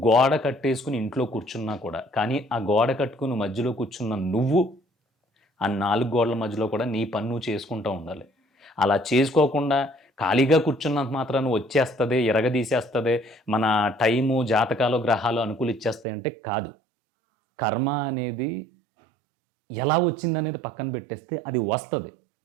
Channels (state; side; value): drops out; left; at 16.1 s